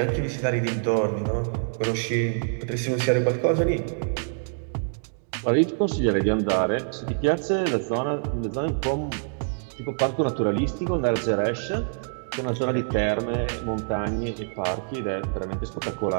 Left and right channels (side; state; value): left; silent; digital silence